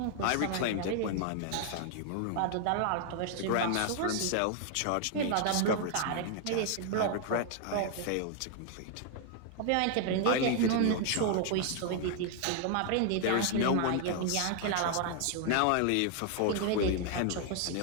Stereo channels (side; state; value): both; different; correlation 0.00